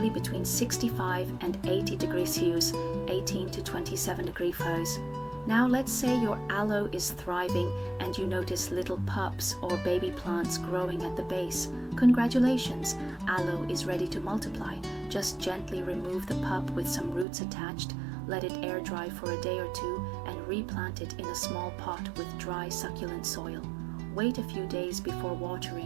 between 65 and 80 degrees Celsius, 18 to 27 degrees Fahrenheit. Now let's say your aloe is thriving and you notice little pups or baby plants growing at the base. Congratulations, aloe is ready to multiply. Just gently remove the pup with some roots attached, let it air dry for a day or two, and replant it in a small pot with dry succulent soil. Wait a few days before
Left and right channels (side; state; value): left; drops out; at 17.2 s